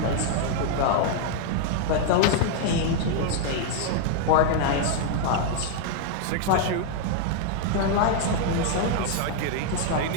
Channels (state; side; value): different; both; correlation 0.00